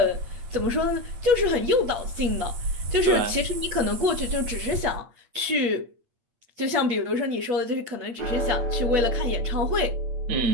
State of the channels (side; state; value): left; late; 8.6 ms